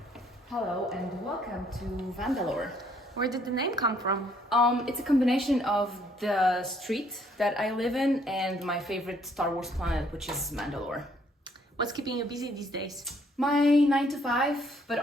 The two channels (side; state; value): both; normal; correlation 0.66